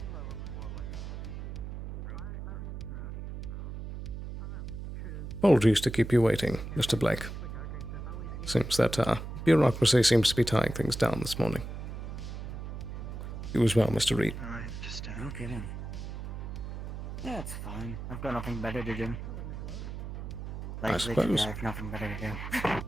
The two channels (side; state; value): right; noise; hum, 7 dB below the sound